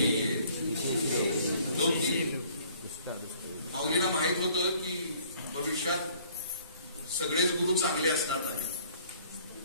माऊलीला माहित होतं की भविष्यात सगळेच गुरु चांगले असणार नाही,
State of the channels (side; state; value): both; inverted; correlation -0.59